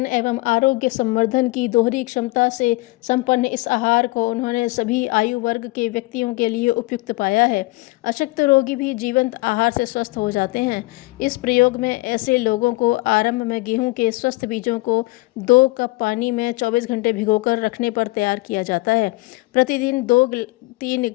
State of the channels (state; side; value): quieter; right; 22.1 dB